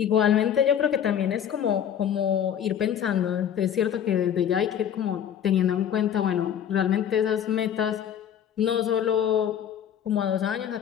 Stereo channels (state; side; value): quieter; right; 9.3 dB